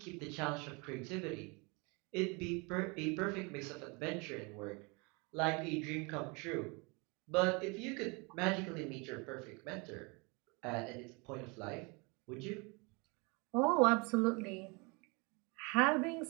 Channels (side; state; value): left; quieter; 29.6 dB